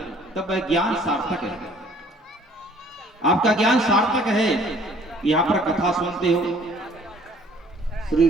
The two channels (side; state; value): both; normal; correlation 0.56